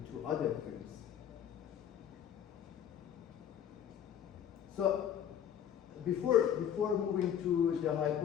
to other firms. So before moving to the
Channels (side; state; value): right; quieter; 9.4 dB